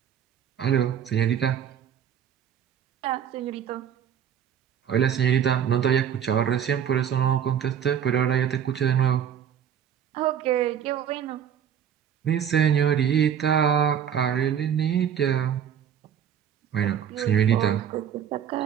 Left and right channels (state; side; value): quieter; left; 8.9 dB